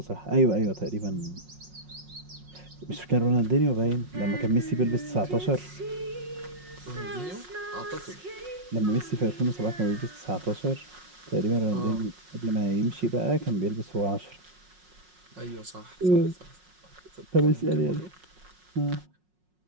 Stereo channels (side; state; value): left; late; 5.5 ms